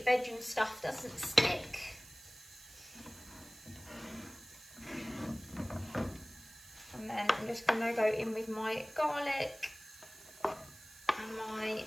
veg and stuff doesn't stick. And then I'm just going to go in with my garlic and my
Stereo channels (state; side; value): noise; right; hiss, 19 dB below the sound